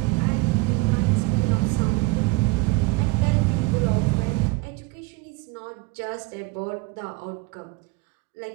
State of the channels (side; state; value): left; quieter; 23.5 dB